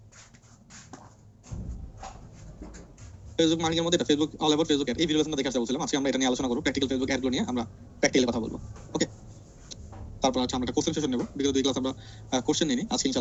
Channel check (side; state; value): both; identical; correlation 1.00